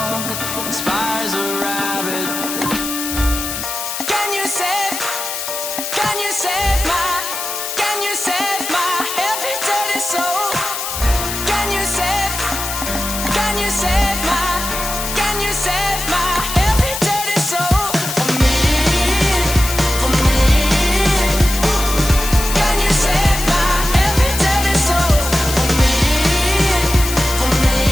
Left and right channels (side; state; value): left; noise; hiss, 5 dB below the sound